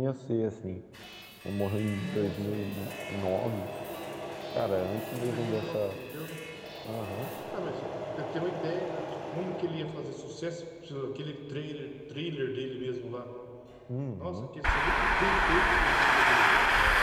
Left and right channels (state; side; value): identical; both; correlation 1.00